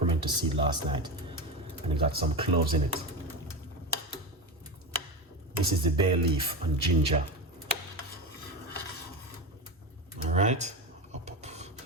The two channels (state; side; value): normal; both; correlation 0.20